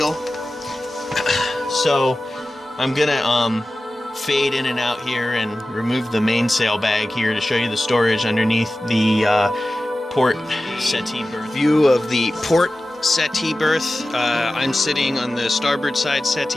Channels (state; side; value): normal; both; correlation 0.95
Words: So I'm gonna fade in and out here and remove the mainsail bag here to show you the storage underneath the port settee berth. View of the port settee berth. I'm sitting on the starboard side